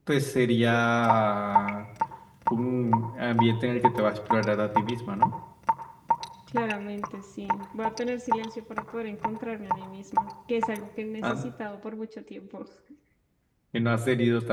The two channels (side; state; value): both; identical; correlation 1.00